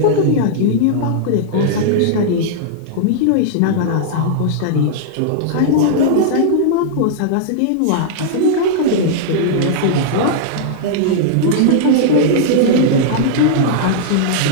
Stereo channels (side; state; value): both; different; correlation -0.01